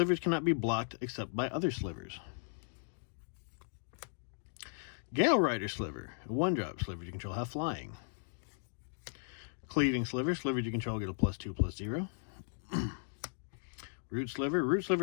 cannot be blocked except by other slivers. Gale Rider Sliver. A 1-drop. Slivers you control have flying. Cleaving Sliver. Slivers you control get a +2/+0. Root Sliver. Root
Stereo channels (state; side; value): silent; right; digital silence